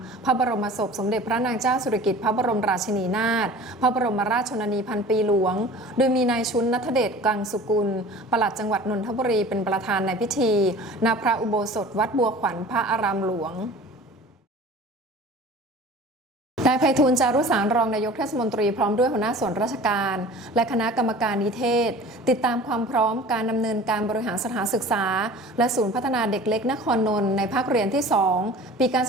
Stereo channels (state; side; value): normal; both; correlation 0.42